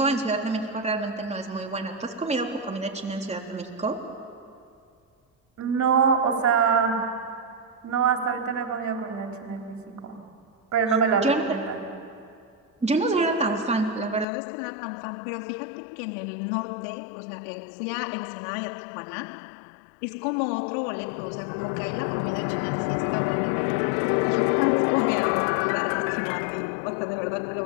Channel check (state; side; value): drops out; right; at 14.2 s